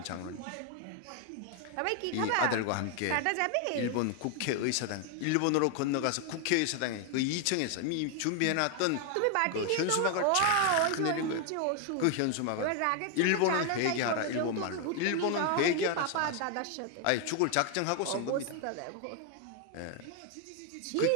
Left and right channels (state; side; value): different; both; correlation 0.01